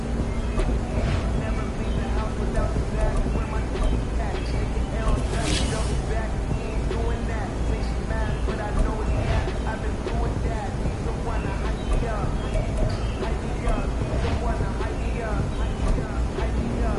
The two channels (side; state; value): both; identical; correlation 1.00